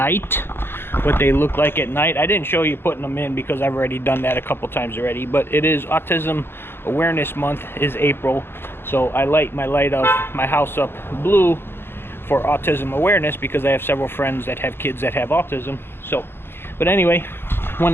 what they look like at night. I didn't show you putting them in because I've already done that a couple times already, but it is Autism Awareness Month is April, so I light of my house up blue for autism awareness because I have several friends that have kids that have autism. So but anyway,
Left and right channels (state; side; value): late; right; 0.11 ms